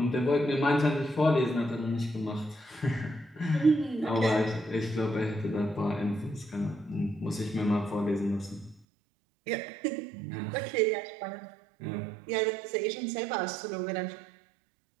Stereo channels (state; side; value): drops out; left; at 8.8 s